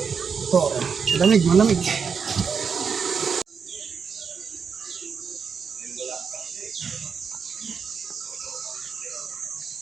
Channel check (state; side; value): quieter; left; 6.1 dB